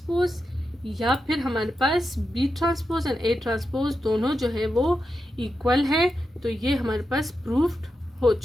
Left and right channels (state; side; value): normal; both; correlation 0.88